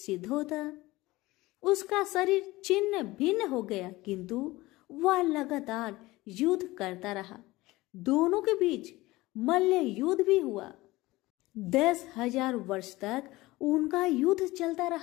होता। उसका शरीर छिन्न भिन्न हो गया, किंतु वह लगातार युद्ध करता रहा। दोनों के बीच मल्ल युद्ध भी हुआ। 10,000 वर्ष तक उनका युद्ध चलता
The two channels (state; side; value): quieter; right; 19.6 dB